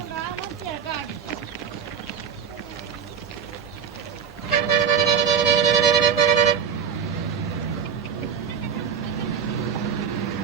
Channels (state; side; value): quieter; left; 7.2 dB